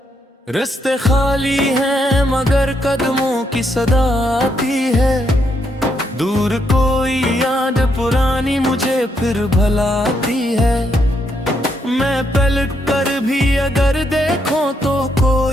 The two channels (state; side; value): normal; both; correlation 0.77